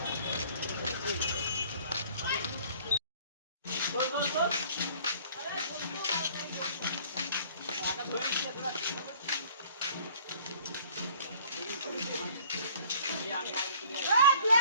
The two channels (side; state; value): both; inverted; correlation -0.53